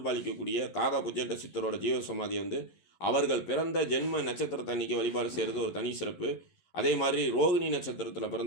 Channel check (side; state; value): right; late; 11 ms